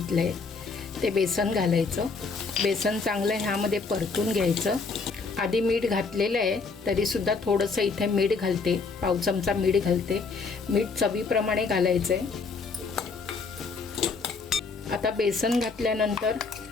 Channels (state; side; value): quieter; right; 4.5 dB